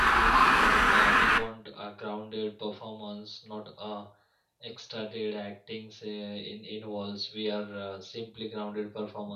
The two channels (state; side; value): identical; both; correlation 1.00